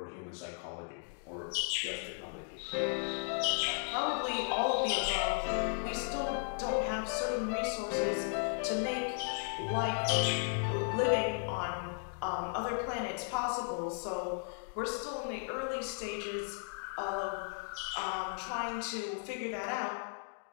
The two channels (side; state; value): right; silent; 54 dB below the other